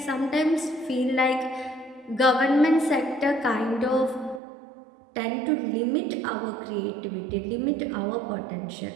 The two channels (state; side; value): drops out; left; at 4.4 s